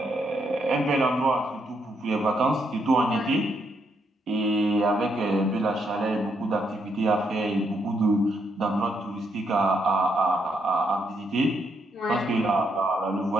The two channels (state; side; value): normal; both; correlation 0.76